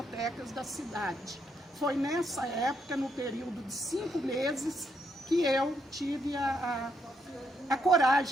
da cidade. Foi nessa época, no período de 5 meses, que eu tive a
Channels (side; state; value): both; normal; correlation 0.76